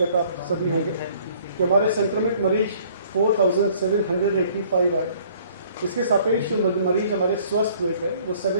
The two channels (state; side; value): inverted; both; correlation -0.57